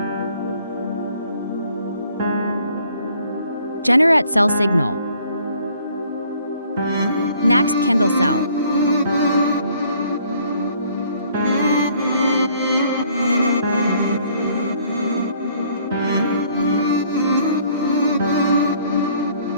Generate Sell Signal. Next Candle Sell.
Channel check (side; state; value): both; inverted; correlation -0.61